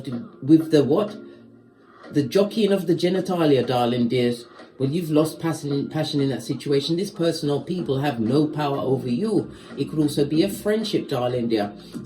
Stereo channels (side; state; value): both; identical; correlation 1.00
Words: with the what? The jockeying of the genitalia, darling dears. Well, you've lost passion in that situation. This person or people have no power over you. It could also be a friendship, darling dear.